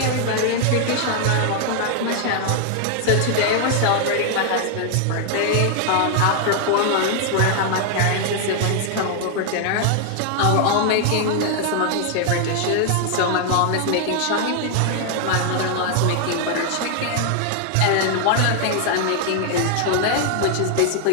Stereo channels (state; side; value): different; both; correlation 0.00